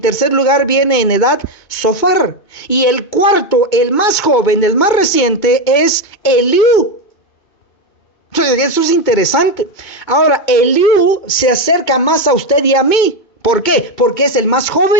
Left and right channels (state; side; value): late; right; 2.2 ms